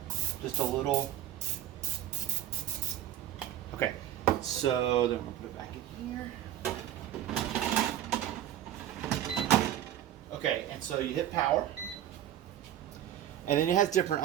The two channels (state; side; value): quieter; left; 11.8 dB